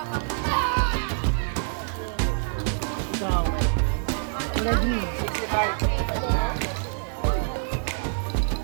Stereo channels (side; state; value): left; silent; 61 dB below the other